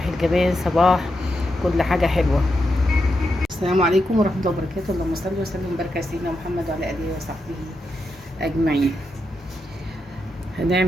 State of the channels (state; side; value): normal; both; correlation 0.85